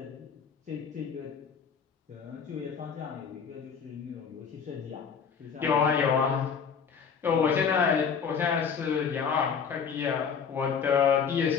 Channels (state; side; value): quieter; right; 6.5 dB